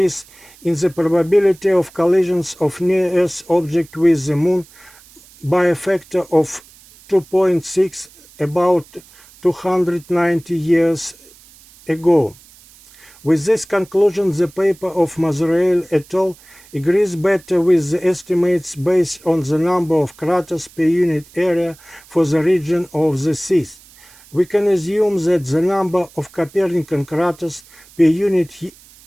in the probability of collisions of near-Earth objects with the Moon by a factor of 2.6 about 290 years ago. With this conclusion, the paper of Mazrael et al. Agrees better with the estimates based on the number of craters per unit area for the region of the seas. We can assume that the number of Copernican craters per unit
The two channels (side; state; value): right; noise; hiss, 25 dB below the sound